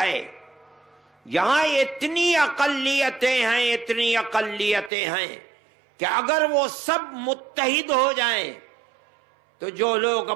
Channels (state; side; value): drops out; left; at 4.9 s